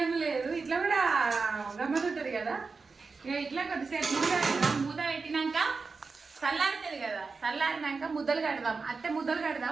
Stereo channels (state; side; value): quieter; left; 4.5 dB